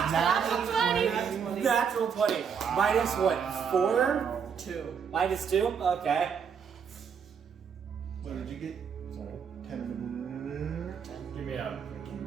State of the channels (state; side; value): quieter; left; 7.0 dB